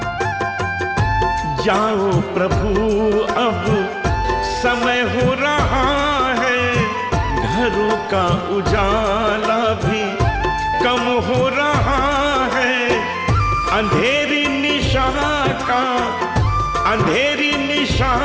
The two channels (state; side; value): identical; both; correlation 1.00